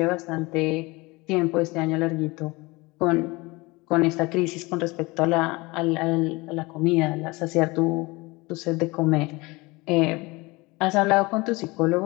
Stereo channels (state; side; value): quieter; right; 23.9 dB